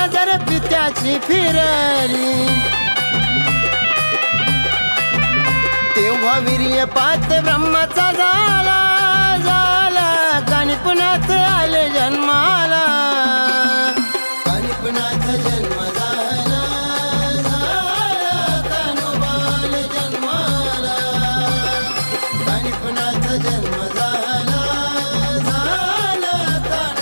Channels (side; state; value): both; inverted; correlation -1.00